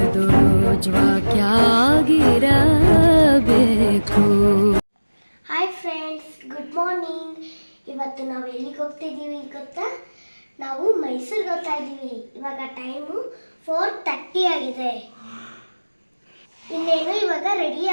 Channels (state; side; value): inverted; both; correlation -1.00